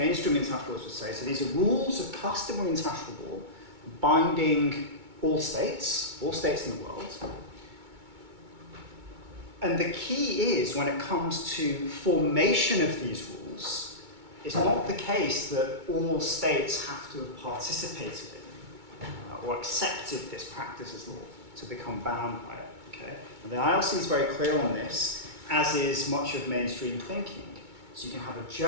international laws would say, so these are rules of customary international law binding all states in the world. And the key is, when it comes to formation of these rules, it's not the case that all states have to have participated in or accepted this practice as law to become bound by it. Okay? And the ILC is very clear on this, as is much of mainstream thinking. So you can have a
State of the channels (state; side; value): late; left; 2.2 ms